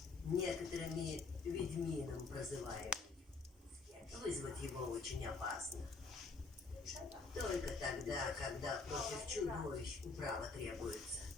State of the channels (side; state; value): right; quieter; 4.1 dB